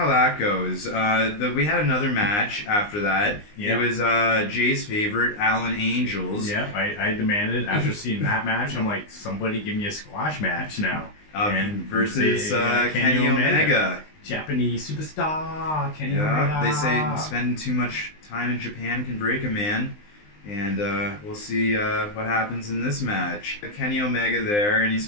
that goes. We had another match after that. Yep. It was Jay's favorite, Allin Angels. Yeah, I demanded after seeing that match. I'm like, somebody give me a squash match now. And versus Kenny Omega. Japanese superstar Kenny Omega. They say Omega. spending too much time in Japan can break a man. And we'll see what happens in this match. Kenny Omega there, and he's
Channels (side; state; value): right; late; 19 ms